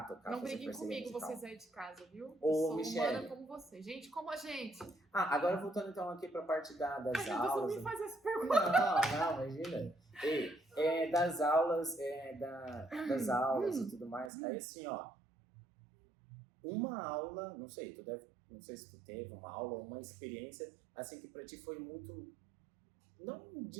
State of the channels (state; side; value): drops out; left; at 14.3 s